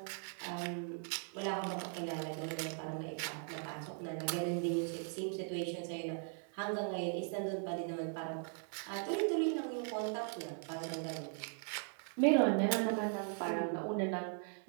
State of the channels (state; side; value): silent; left; 52 dB below the other